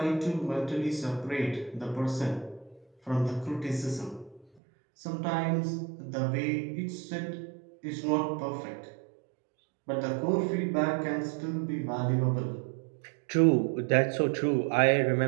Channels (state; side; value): drops out; left; at 4.5 s